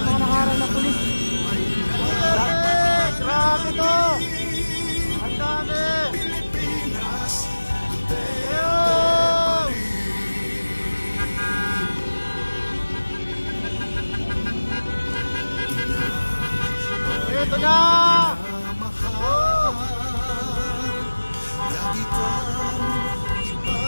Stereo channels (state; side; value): inverted; both; correlation -1.00